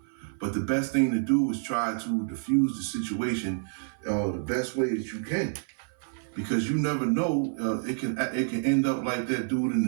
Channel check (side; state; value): left; silent; 55 dB below the other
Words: But the best thing to do is try to diffuse the situation the best way that you can. Because you never know, it can end up like that dude in the